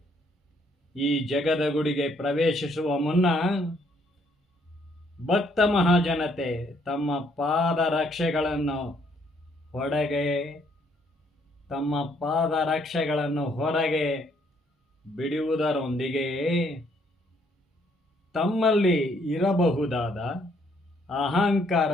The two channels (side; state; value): both; normal; correlation 0.68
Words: ಈ ಜಗದ ಗುಡಿಗೆ ಪ್ರವೇಶಿಸುವ ಮುನ್ನ ಭಕ್ತ ಮಹಾಜನತೆ ತಮ್ಮ ಪಾದರಕ್ಷೆಗಳನ್ನು ಹೊರಗೆ ಬಿಡುವುದರೊಂದಿಗೆ ತಮ್ಮಲ್ಲಿ ಇರಬಹುದಾದ